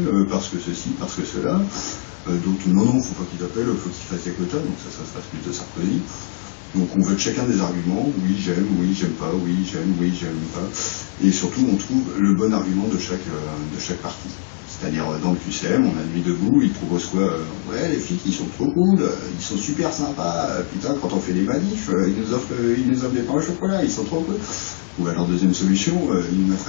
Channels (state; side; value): silent; right; digital silence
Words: parce que ceci, parce que cela. Donc non, faut pas qu'ils appellent, faut qu'ils fassent des quotas, donc ça se passe plutôt Sarkozy. Donc on vote chacun des arguments, oui j'aime pas, oui j'aime pas, et surtout on trouve le bon argument de chaque parti. C'est-à-dire dans le QCM, on a Nuit debout, ils proposent quoi ouais, les flics ils sont trop cool, ils sont super sympas, putain quand on fait des manifs, ils nous offrent des pains au chocolat, ils sont trop cool. Ou alors deuxième solution, ils nous